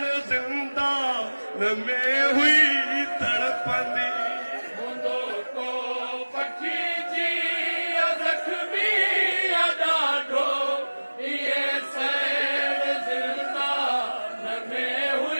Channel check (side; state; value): both; inverted; correlation -1.00